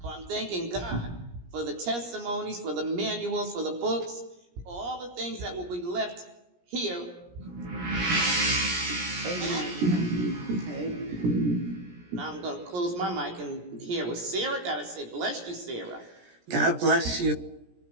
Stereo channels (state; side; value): late; left; 17 ms